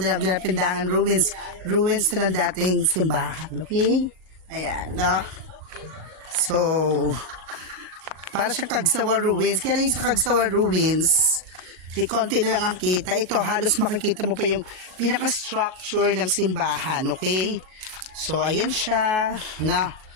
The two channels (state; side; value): late; left; 37 ms